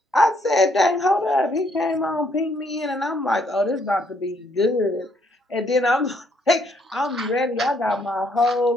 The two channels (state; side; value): normal; both; correlation 0.70